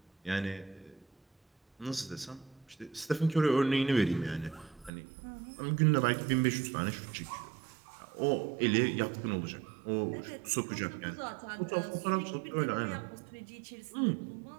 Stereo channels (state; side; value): drops out; left; at 4.9 s